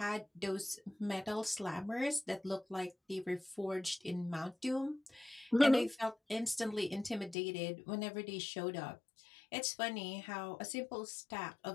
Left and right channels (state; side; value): drops out; right; at 7.4 s